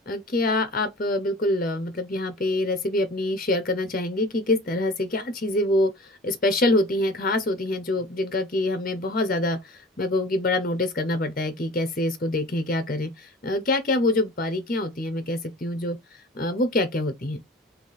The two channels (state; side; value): normal; both; correlation 0.43